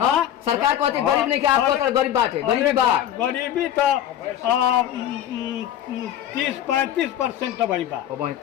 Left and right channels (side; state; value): right; quieter; 11.1 dB